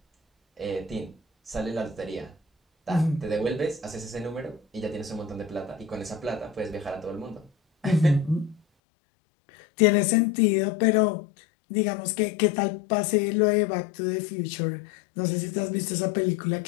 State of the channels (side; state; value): right; drops out; at 8.6 s